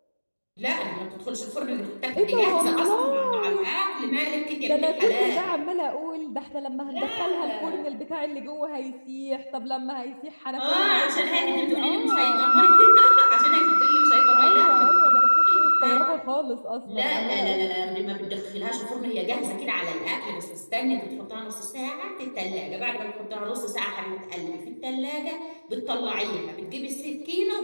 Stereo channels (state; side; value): inverted; both; correlation -1.00